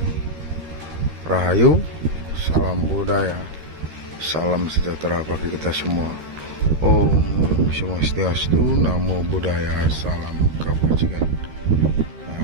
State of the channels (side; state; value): left; late; 13 ms